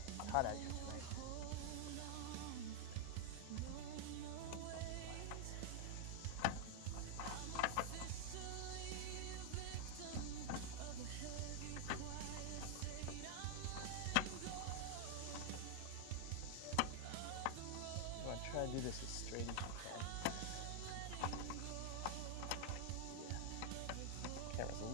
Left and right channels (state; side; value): different; both; correlation 0.00